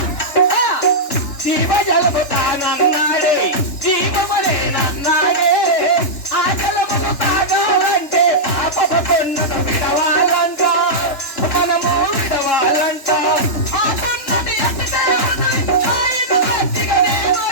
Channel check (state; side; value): late; right; 3.4 ms